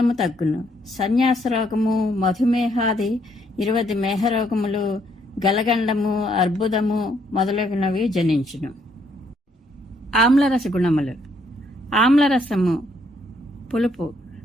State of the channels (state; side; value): normal; both; correlation 0.70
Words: తగ్గును. సన్యాస రోగము, మధుమేహాది 20 మేహరోగములు, గలగండము, అర్బుదము మొదలగునవి జనించును. ఆమ్లరస గుణములు. ఆమ్లరసము పులుపు,